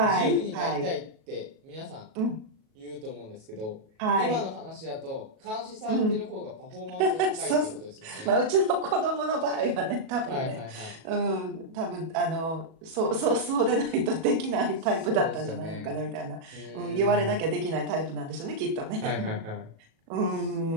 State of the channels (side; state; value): left; late; 37 ms